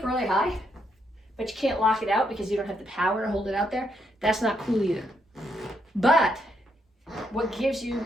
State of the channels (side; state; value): both; normal; correlation 0.77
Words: really high, but you can't lock it out because you don't have the power to hold it out there, that's not cool either. But what gives you